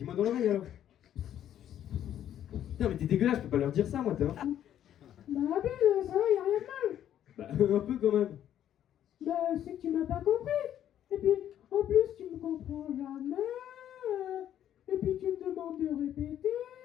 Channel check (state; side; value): quieter; right; 10.8 dB